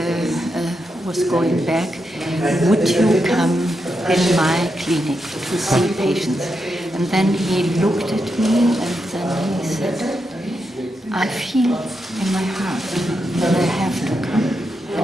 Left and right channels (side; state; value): both; normal; correlation 0.85